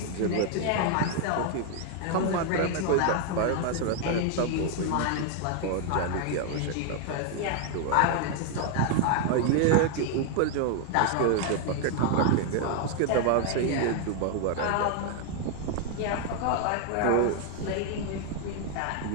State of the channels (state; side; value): different; both; correlation 0.00